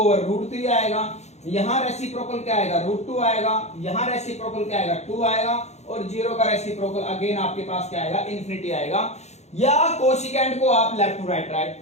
आएगा, यहां रेसिप्रोकल क्या आएगा, √2 आएगा, यहां रेसिप्रोकल क्या आएगा, 2 आएगा, और 0 का रेसिप्रोकल अगेन आपके पास क्या आएगा, इन्फिनिटी आएगा। या कोसिकेंट को आप लेफ्ट टू राइट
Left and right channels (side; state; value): right; late; 0.32 ms